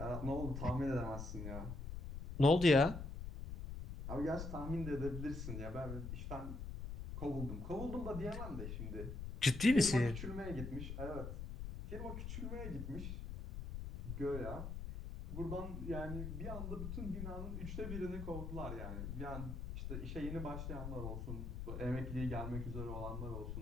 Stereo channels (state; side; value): noise; left; rumble, 6 dB below the sound